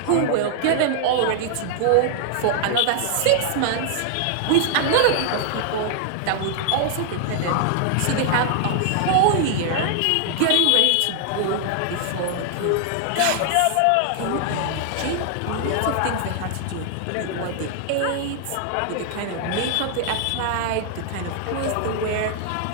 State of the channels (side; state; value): both; different; correlation 0.00